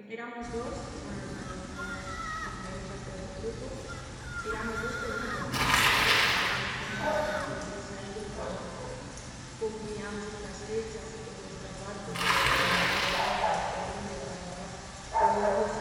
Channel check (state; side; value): identical; both; correlation 1.00